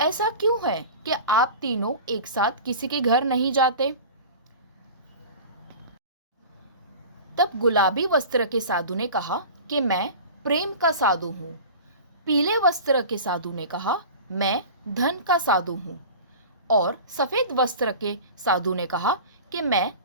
क्यों है कि आप तीनों एक साथ किसी के घर नहीं जाते? तब गुलाबी वस्त्र के साधु ने कहा कि मैं प्रेम का साधु हूँ। पीले वस्त्र के साधु ने कहा, मैं धन का साधु हूँ। और सफेद वस्त्र के साधु ने कहा कि मैं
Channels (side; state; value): both; inverted; correlation -0.36